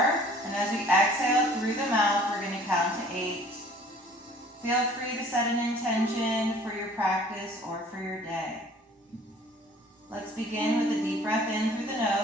and as we exhale through the mouth, we're going to count to 8. Feel free to set an intention for your practice or for your day. Let's begin with a deep breath in through the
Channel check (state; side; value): normal; both; correlation 0.52